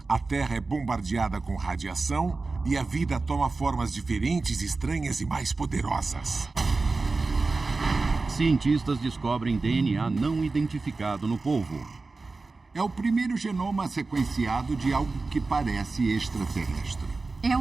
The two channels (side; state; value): left; quieter; 3.8 dB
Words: A Terra é bombardeada com radiação e a vida toma formas diferentes, estranhas e mais poderosas. Cientistas descobrem DNA não identificado no polvo. É o primeiro genoma sequenciado de algo que parece extraterrestre. É